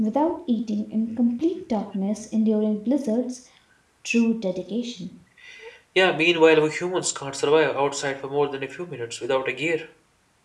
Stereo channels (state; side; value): identical; both; correlation 1.00